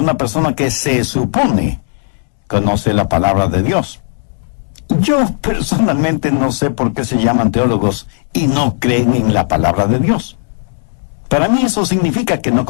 persona que se supone conoce la palabra de Dios. Yo personalmente no sé por qué se llaman teólogos y no creen en la palabra de Dios. Para mí eso significa que no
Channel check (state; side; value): silent; right; digital silence